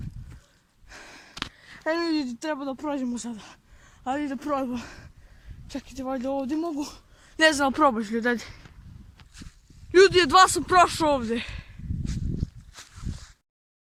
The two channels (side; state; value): both; identical; correlation 1.00